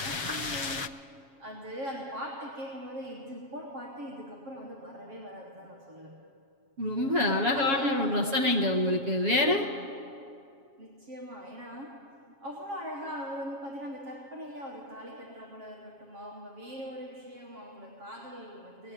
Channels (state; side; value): late; left; 7.3 ms